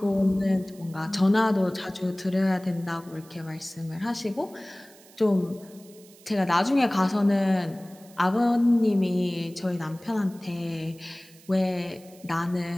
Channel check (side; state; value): right; noise; hiss, 24 dB below the sound